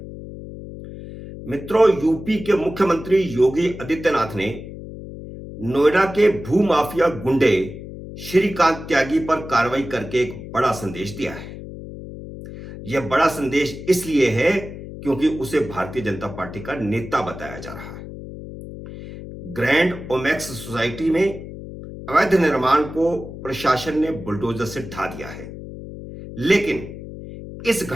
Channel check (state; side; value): noise; left; hum, 12 dB below the sound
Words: मित्रों, यूपी के मुख्यमंत्री योगी आदित्यनाथ ने नोएडा के भूमाफिया गुंडे श्रीकांत त्यागी पर कार्रवाई करके एक बड़ा संदेश दिया है। यह बड़ा संदेश इसलिए है क्योंकि उसे भारतीय जनता पार्टी का नेता बताया जा रहा है। ग्रैंड ओमेक्स सोसाइटी में अवैध निर्माण को प्रशासन ने बुलडोजर से ढा दिया है, लेकिन इस